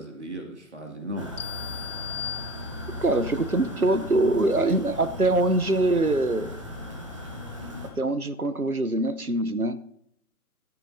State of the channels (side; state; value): both; normal; correlation 0.40